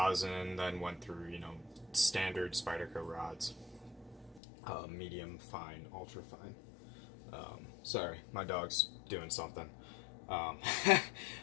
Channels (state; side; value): drops out; right; at 4.4 s